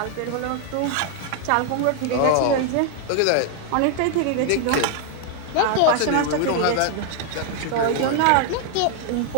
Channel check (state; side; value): different; both; correlation 0.00